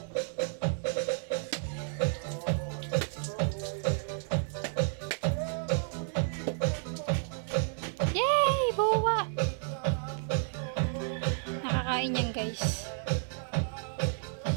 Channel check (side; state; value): left; silent; 57 dB below the other